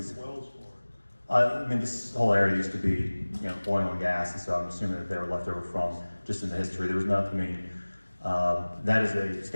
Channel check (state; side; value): inverted; both; correlation -1.00